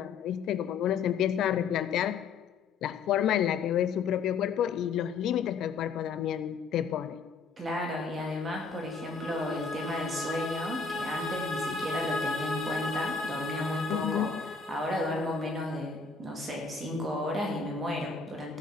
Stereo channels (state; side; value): quieter; right; 5.0 dB